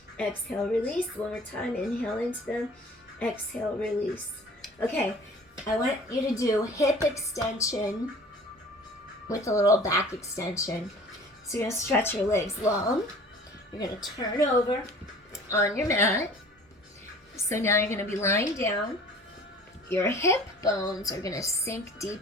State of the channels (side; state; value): both; normal; correlation 0.46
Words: Exhale, release. One more time. Inhale into them. Exhale, release. Okay, I want you to do hip extension with a little back extension. So you're going to stretch your legs long. You're going to turn over on your mat. So now you're going to be lying down. Your hip bones are going to sink